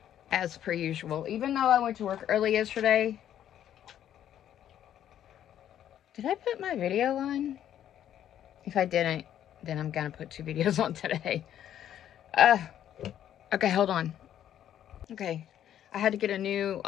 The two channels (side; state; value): right; quieter; 10.7 dB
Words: As per usual. Even though I went to work early yesterday. Did I put my video on? If I didn't, then I'm gonna put 2 videos on today. Okay, hold on. Okay. I had to get a new